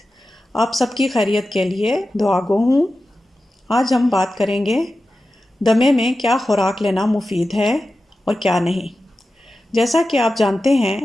آپ سب کی خیریت کے لیے دعا گو ہوں۔ آج ہم بات کریں گے دمے میں کیا خوراک لینا مفید ہے اور کیا نہیں۔ جیسا کہ آپ جانتے ہیں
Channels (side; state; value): both; normal; correlation 0.93